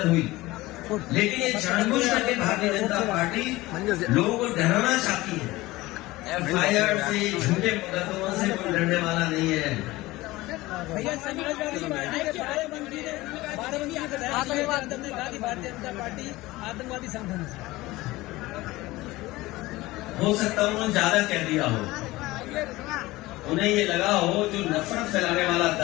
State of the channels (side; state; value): right; quieter; 19.2 dB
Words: हुई। लेकिन ये जानबूझ करके भारतीय जनता पार्टी लोगों को डराना चाहती है। FIR से, झूठे मुकदमों से कोई डरने वाला नहीं है। आतंकवादी संगठन हो सकता है उन्होंने ज्यादा कह दिया हो, उन्हें ये लगा हो जो नफरत फैलाने वाला